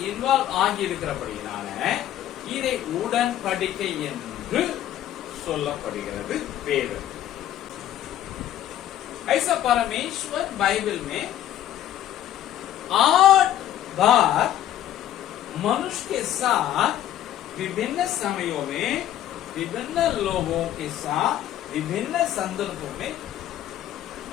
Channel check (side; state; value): right; quieter; 12.1 dB